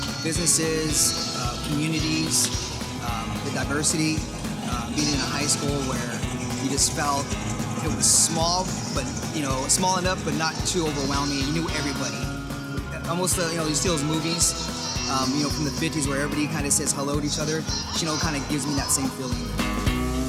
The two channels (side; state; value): both; identical; correlation 1.00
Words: businesses, communities, the diversity, being in a high school where you just felt it was small, but small enough, but not too overwhelming. You knew everybody. Almost, you see those movies, from the 50s where everybody kind of says hello to each other. Chino kind of gives me that same feeling.